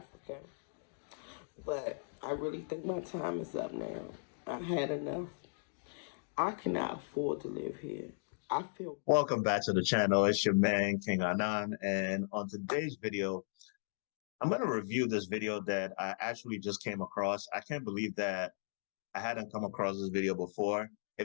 but I really think my time is up now. I've had enough. I cannot afford to live here. I feel Welcome back to the channel. It's your man, King Anan. And on today's video, I'm going to review this video that I actually just came across. I can't believe that I hadn't come across this video before.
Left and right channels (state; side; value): silent; right; digital silence